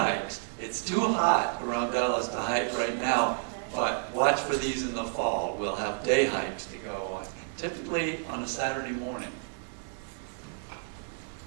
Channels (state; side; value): silent; left; 58 dB below the other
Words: It's too hot around Dallas to hike right now, but watch for these in the fall. We'll have day hikes to go on, typically on a Saturday morning.